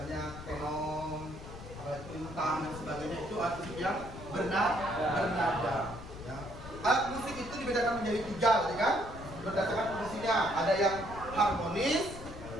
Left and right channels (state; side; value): noise; left; rumble, 12 dB below the sound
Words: tenong, lintang dan sebagainya itu alat musik yang bernada. Ya. Alat musik itu dibedakan menjadi 3 tadi kan? Berdasarkan fungsinya. Ada yang harmonis,